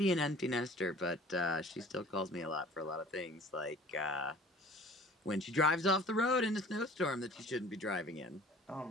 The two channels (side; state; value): both; normal; correlation 0.47